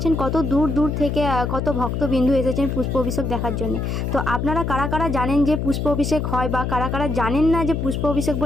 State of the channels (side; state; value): left; noise; hum, 2 dB below the sound